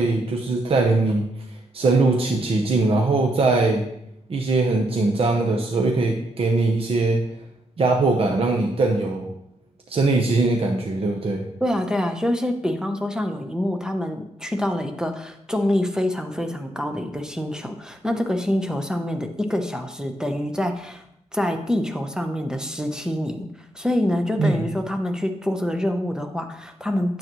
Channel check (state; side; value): normal; both; correlation 0.78